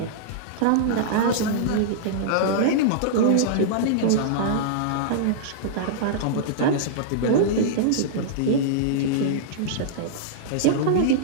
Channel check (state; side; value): different; both; correlation -0.02